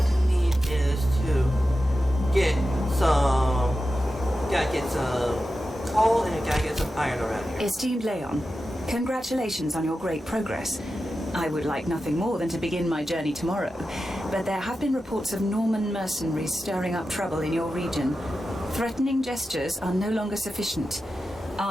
to need is to get some... Gotta get some coal and gotta get some iron around here. Esteemed Leon, congratulations on your great progress. I would like nothing more than to begin my journey tomorrow, but there have been reports of Norman mercenaries stirring up trouble in your region. Threatening gestures are no longer sufficient.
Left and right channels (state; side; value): normal; both; correlation 0.92